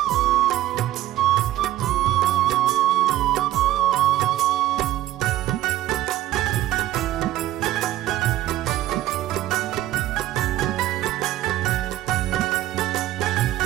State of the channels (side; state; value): left; quieter; 14.3 dB